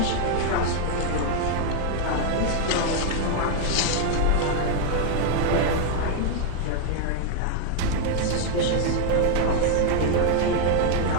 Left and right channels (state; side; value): different; both; correlation 0.00